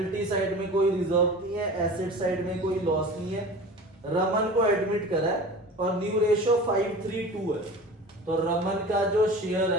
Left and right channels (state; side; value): normal; both; correlation 0.37